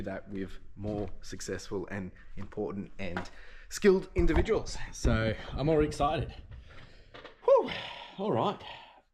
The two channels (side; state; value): both; identical; correlation 1.00